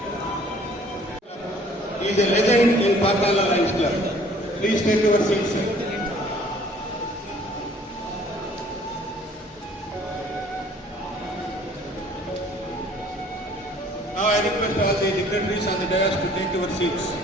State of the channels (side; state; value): both; normal; correlation 0.55